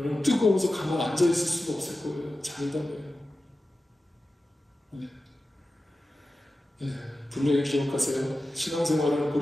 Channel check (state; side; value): normal; both; correlation 0.94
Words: 뜨거워서 가만 앉아있을 수가 없을 거예요. 장담해요. 네. 네, 분명히 기억하세요. 신앙생활은